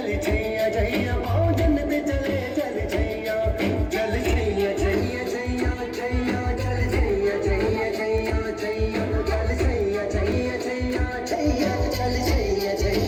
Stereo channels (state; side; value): identical; both; correlation 1.00